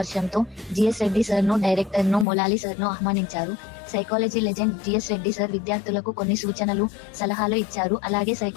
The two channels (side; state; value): right; drops out; at 2.2 s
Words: జిఎస్ రెడ్డి సార్ ను, డైరెక్టర్ ను, మొలాలి సార్ ను ఆహ్వానించారు. Psychology legend GS Reddy sir విద్యార్థులకు కొన్ని సూచనలు, సలహాలు ఇచ్చారు. అలాగే